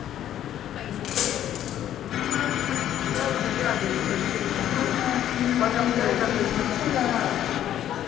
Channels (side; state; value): right; quieter; 11.3 dB